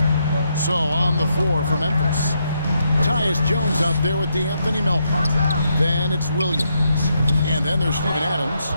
So on the floor for Memphis. Tyus Jones out there with D'Anthony Melton. Then it's Williams. And then there's Steven Adams.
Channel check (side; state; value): both; inverted; correlation -0.78